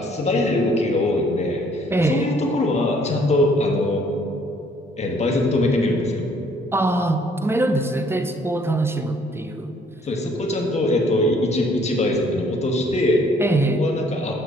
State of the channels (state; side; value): normal; both; correlation 0.62